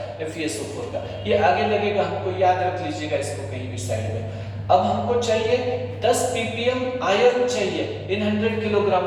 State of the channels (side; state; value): both; identical; correlation 1.00